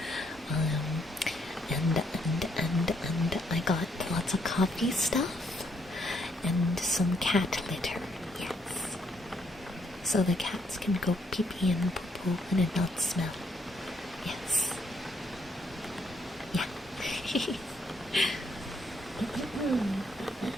And I got lots of coffee stuff and some cat litter. Yes. So the cats can go pee-pee and poo-poo and it not smell. Yes. Yeah.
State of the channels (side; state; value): both; normal; correlation 0.72